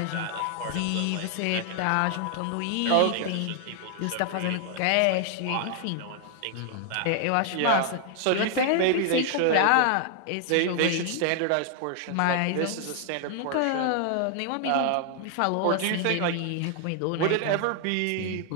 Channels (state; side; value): different; both; correlation 0.00